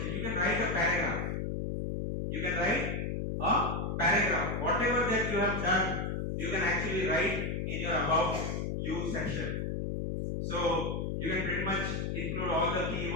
You can write a paragraph. You can write a paragraph. Whatever that you have done, you can actually write in your about you section. So you can pretty much include all the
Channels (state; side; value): noise; left; hum, 1 dB below the sound